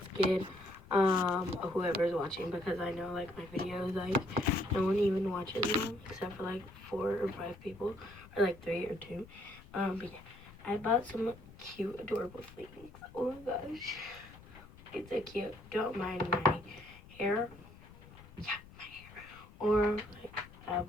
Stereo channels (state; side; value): noise; left; rumble, 20 dB below the sound